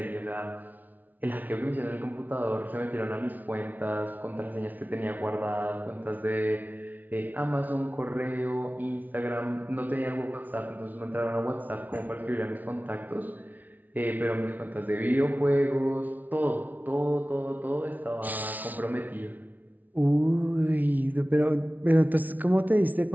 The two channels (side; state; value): left; late; 0.079 ms